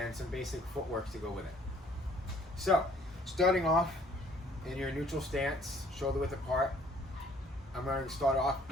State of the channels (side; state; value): both; normal; correlation 0.58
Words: some basic footwork to go with it. So, starting off in your neutral stance, shoulder width apart, I'm going to start off